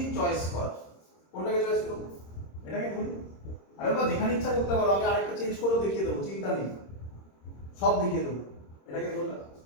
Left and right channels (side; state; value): right; late; 26 ms